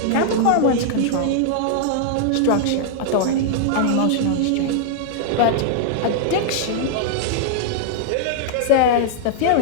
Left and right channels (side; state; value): both; different; correlation -0.01